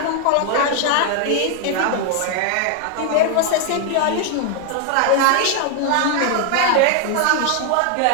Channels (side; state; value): both; different; correlation 0.00